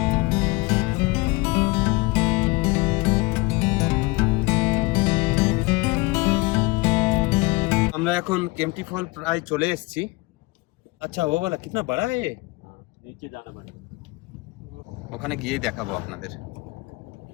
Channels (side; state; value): right; quieter; 23.9 dB